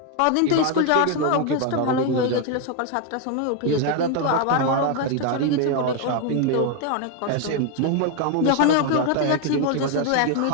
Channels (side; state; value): both; different; correlation 0.01